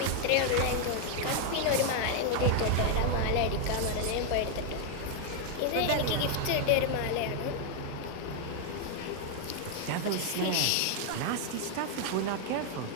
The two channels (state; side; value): different; both; correlation 0.00